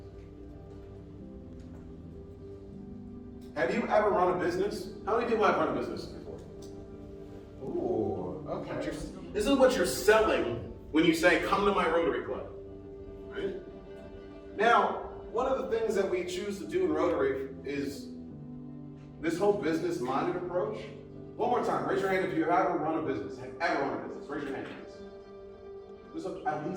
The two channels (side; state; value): both; identical; correlation 1.00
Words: Have you ever run a business? How many people have run a business before? Ooh, okay. This is what you're selling when you say, come to my Rotary Club, right? Now, one of the things that we choose to do in Rotary is this whole business-minded approach. One more time, raise your hand if you have ever run a business. Have ever run a business? Raise your hand, please. There's at